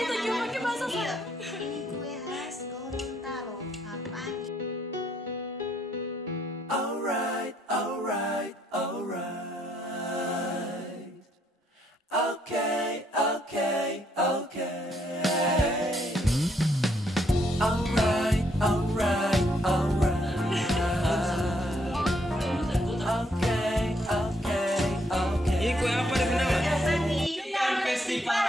cuma pakai bahasa saya. Ini kue khas Gorontalo, Apangi. Alright. Okay. Ini kue apa di mana? Festival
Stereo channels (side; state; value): both; normal; correlation 0.72